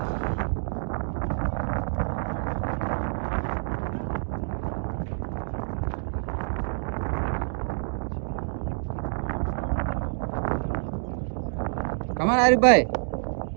కమాన్ హరీఫ్ భాయ్.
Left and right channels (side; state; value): left; silent; digital silence